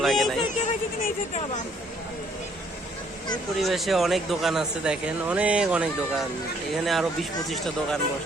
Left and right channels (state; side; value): normal; both; correlation 0.64